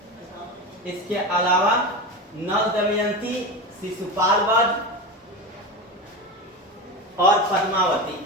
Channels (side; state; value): both; normal; correlation 0.23